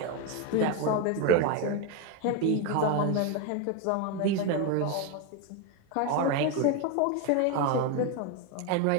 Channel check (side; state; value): both; different; correlation 0.02